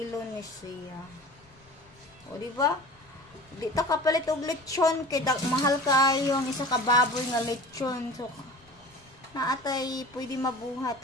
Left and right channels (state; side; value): noise; left; rumble, 28 dB below the sound